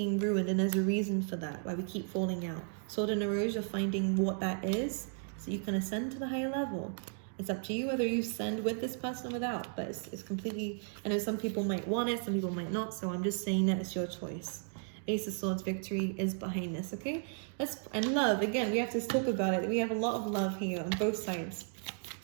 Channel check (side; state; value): left; silent; 55 dB below the other